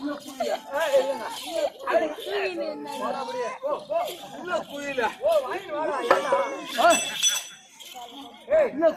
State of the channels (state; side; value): identical; both; correlation 1.00